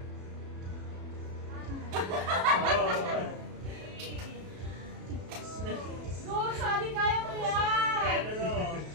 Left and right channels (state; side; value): late; left; 33 ms